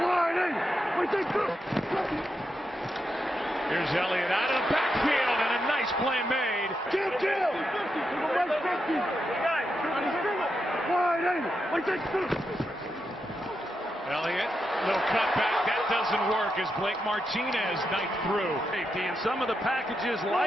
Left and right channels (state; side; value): normal; both; correlation 0.85